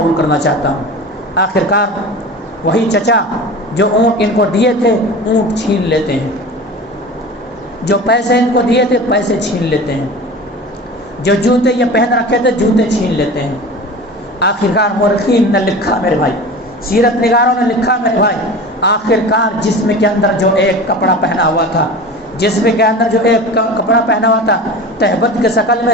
کرنا چاہتا ہوں۔ آخرکار وہی چچا جو اونٹ ان کو دیے تھے اونٹ چھین لیتے ہیں، جو پیسے ان کو دیے تھے پیسے چھین لیتے ہیں، جو جوتے یہ پہن رکھے تھے جوتے چھین لیتے ہیں۔ آخرکار مورخین نے لکھا میرے بھائی، سیرت نگاروں نے لکھا میرے بھائی، آخرکار جسم کے اندر جو ایک کپڑا پہنا ہوا تھا، جسم کے اندر جو ایک کپڑا پہنا ہوا تھا، تہبت کے شکل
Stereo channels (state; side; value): normal; both; correlation 0.35